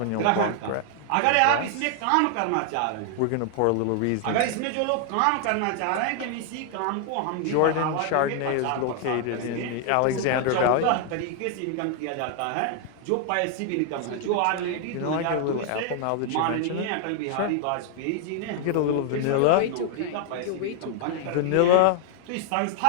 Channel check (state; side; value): different; both; correlation 0.00